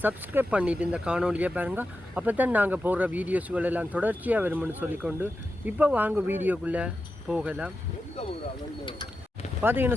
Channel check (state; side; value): normal; both; correlation 0.90